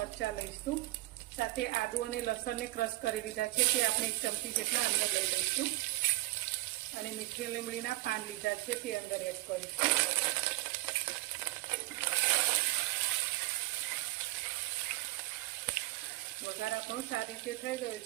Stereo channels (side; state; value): left; quieter; 19.7 dB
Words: લઈશું, સાથે આદુ અને લસણને ક્રશ કરી લીધા છે, તે આપણે 1 ચમચી જેટલા અંદર લઈ લઈશું અને મીઠી લીમડીના પાન લીધા છે, તે અંદર એડ કરીશું। વઘાર આપણો સારી રીતે થઈ ગયો